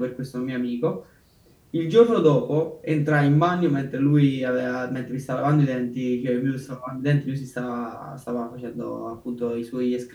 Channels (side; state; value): both; identical; correlation 1.00